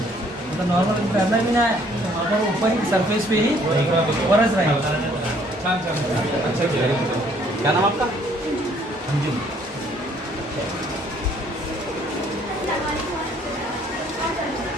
मतलब नॉर्मल तैरना भी ना है तो वहाँ पर ऊपर ही सरफेस पे ही बरस रहेगा। क्या नाम आपका? जी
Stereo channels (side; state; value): both; normal; correlation 0.62